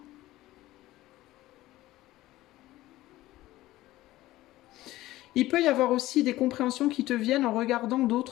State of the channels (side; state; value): right; quieter; 16.5 dB